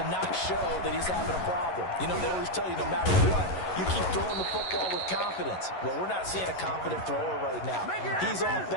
not show that he's having a problem. You know, they always tell you no matter what, you keep throwing the football with confidence. Well, we're not seeing a confident thrower right now. He's off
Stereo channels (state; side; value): late; right; 11 ms